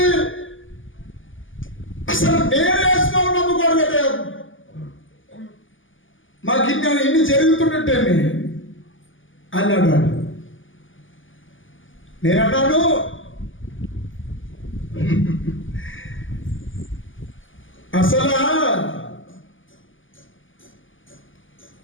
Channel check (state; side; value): late; right; 0.58 ms